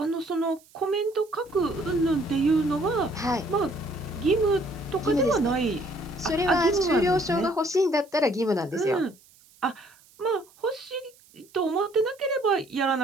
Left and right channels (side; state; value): right; noise; hiss, 28 dB below the sound